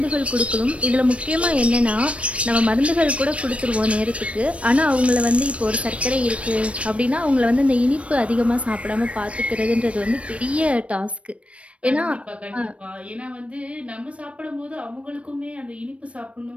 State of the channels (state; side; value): late; left; 0.062 ms